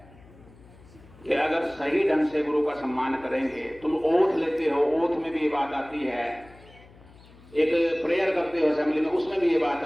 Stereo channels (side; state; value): left; noise; hum, 24 dB below the sound